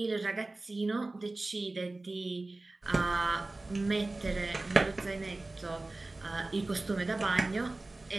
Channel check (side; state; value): left; quieter; 3.0 dB